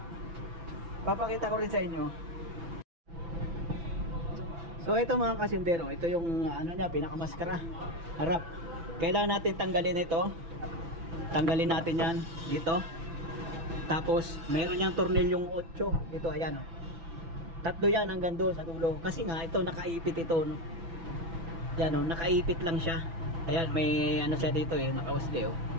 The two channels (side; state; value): left; late; 6.0 ms